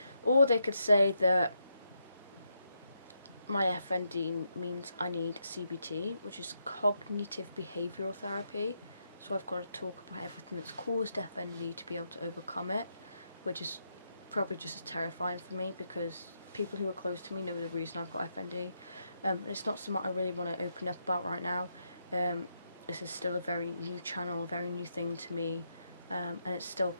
Or they could say that my FND means I need CBT, which is cognitive behavioural therapy. So I've got to talk about everything that's caused FND to be able to overcome it, which is probably just as terrifying for me because people who are close to me know the reason I've got FND. It's not something I really want to open up about right now. This is still a very new channel, a very new thing to me, and it's still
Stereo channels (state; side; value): inverted; both; correlation -0.81